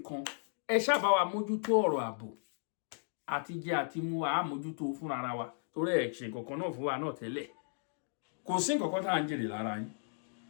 ẹ ṣáàbá wa mójútó ọ̀rọ̀ ààbò àti jẹ àti mu a mójútó fún ara wa torí ẹ ṣe nǹkan náà fún wa náà tẹ́lẹ̀ kò sí nǹkan tá à ń jèrè lára yín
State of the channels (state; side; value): silent; right; digital silence